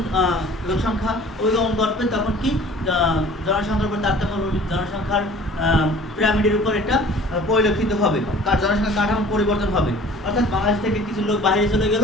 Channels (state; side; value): normal; both; correlation 0.47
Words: লোকসংখ্যা অভিগমন ঘটবে, তখন কি জনসংখ্যার উপর তারতম্য, জনসংখ্যার পিরামিডের উপর এটা পরিলক্ষিত হবে, তার জনসংখ্যা কাঠামো পরিবর্তন হবে। অর্থাৎ বাংলাদেশ থেকে কিছু লোক বাইরে চলে গেল,